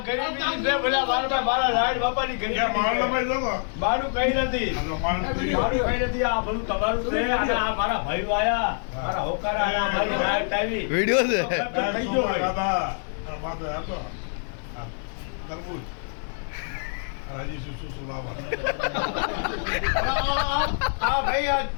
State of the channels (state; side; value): silent; right; 60 dB below the other